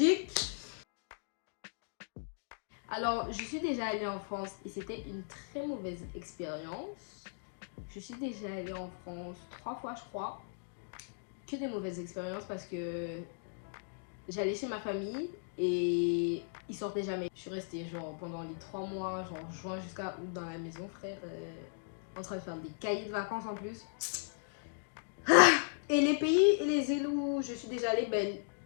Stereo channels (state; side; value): silent; right; digital silence